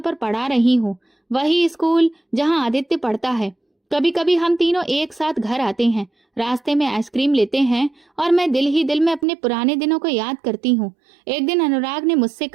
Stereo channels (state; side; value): drops out; left; at 9.2 s